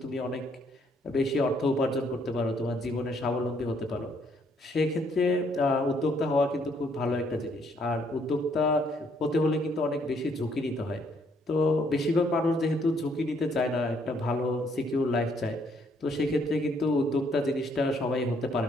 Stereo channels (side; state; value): both; normal; correlation 0.68